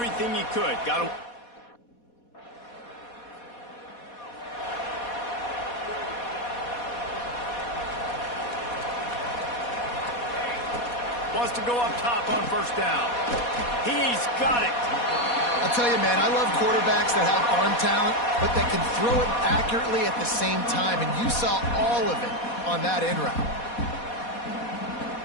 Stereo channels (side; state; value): right; late; 4.2 ms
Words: he could. Got a... Wants to go up top on first down. He's got it. I'll tell you, man, I love quarterbacks that have arm talent, but that can throw it accurately at the same time, and you saw all of it on that in route.